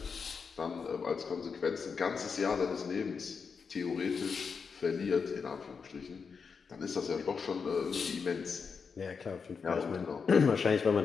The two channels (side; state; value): right; quieter; 5.6 dB